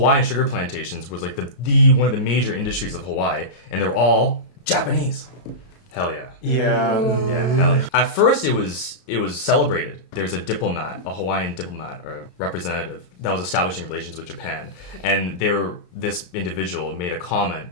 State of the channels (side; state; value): right; late; 32 ms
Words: sugar plantations was like the one of the major industries of Hawaii, and they were all Japanese. Hell yeah. Yeah. Yeah, hell yeah. At first it was celebrated. There's a Hawaiian diplomat or representative that was establishing relations with Japan, and this individual made a comment